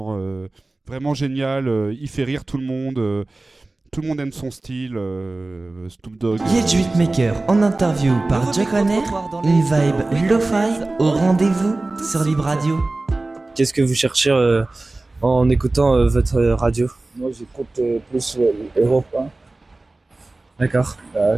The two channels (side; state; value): left; quieter; 3.1 dB